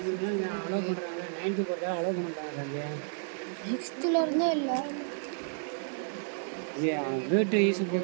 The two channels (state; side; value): silent; left; digital silence